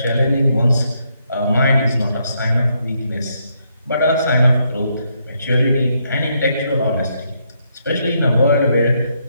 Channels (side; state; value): both; inverted; correlation -0.76